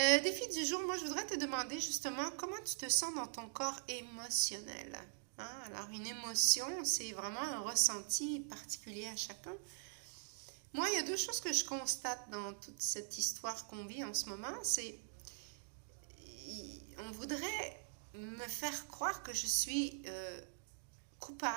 du jour, moi je voudrais te demander justement comment tu te sens dans ton corps émotionnel. Hein? Alors, une émotion, c'est vraiment un ressenti particulier à chacun. Moi, il y a deux choses que je constate dans toute cette histoire qu'on vit en ce moment. C'est on voudrait me faire croire que je suis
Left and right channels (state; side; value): silent; left; digital silence